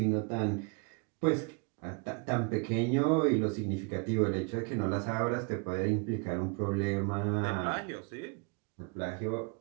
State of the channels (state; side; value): quieter; left; 32.8 dB